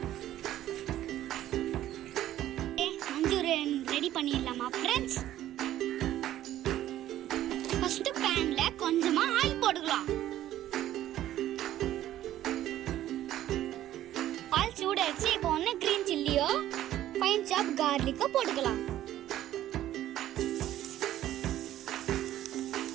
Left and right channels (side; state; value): left; quieter; 13.0 dB